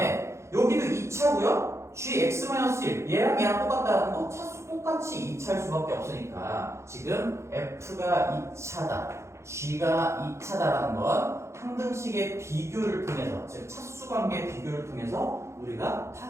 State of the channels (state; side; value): late; left; 0.13 ms